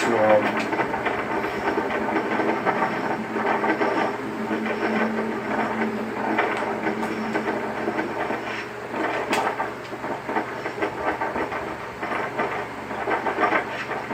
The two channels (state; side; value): identical; both; correlation 1.00